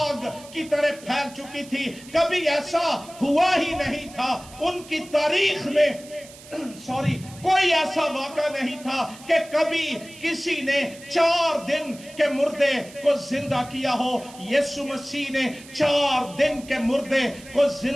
کی طرح پھیل چکی تھی۔ کبھی ایسا ہوا ہی نہیں تھا ان کی تاریخ میں، کوئی ایسا واقعہ نہیں تھا کہ کبھی کسی نے 4 دن کے مردے کو زندہ کیا ہو۔ یسوع مسیح نے 4 دن کے مردے کو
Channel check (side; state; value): right; noise; hiss, 19 dB below the sound